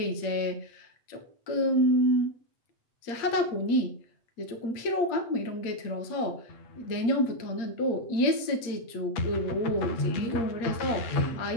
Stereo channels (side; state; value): right; late; 8.6 ms